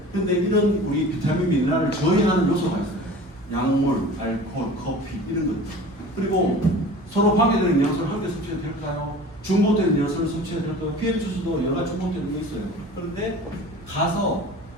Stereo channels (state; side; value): normal; both; correlation 0.40